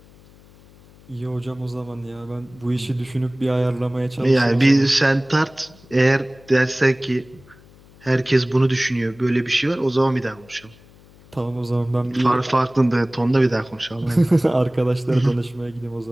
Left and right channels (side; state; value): left; noise; hum, 26 dB below the sound